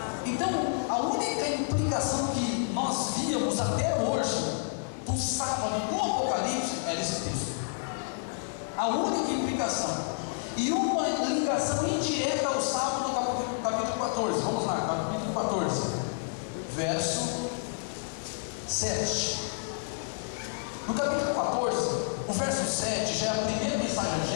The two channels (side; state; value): right; silent; 58 dB below the other